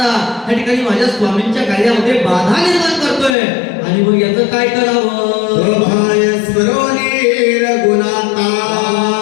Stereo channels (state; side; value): drops out; right; at 3.4 s